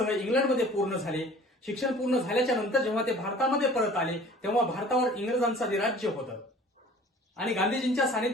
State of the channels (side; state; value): both; normal; correlation 0.47